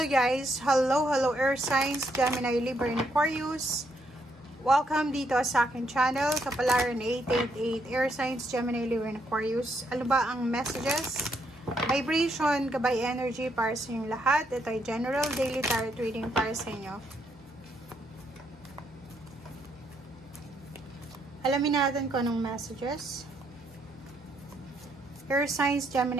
guys! Hello Air Signs, Gemini, Libra, and Aquarius. Welcome dito sa aking channel, Kapalaran 888, Air Signs, Gemini, Libra, and Aquarius. Ano ba ang messages? Vibration, gabay energy para sa inyong lahat. Ito ay general daily tarot reading para sa inyo. Alamin natin kung anong messages. Air Signs,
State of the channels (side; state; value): both; normal; correlation 0.75